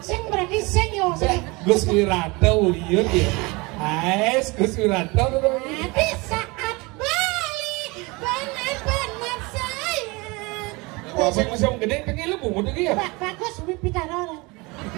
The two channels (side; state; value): left; quieter; 25.4 dB